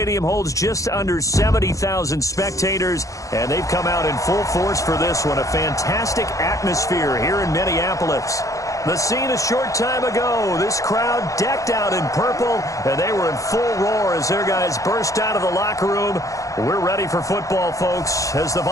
holds just under 70,000 spectators, and they've come out in full force for this one. A fantastic atmosphere here in Minneapolis. The scene a short time ago, this crowd decked out in purple, and they were in full roar as their guys burst out of the locker room. We're ready for football, folks, as the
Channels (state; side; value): late; right; 0.16 ms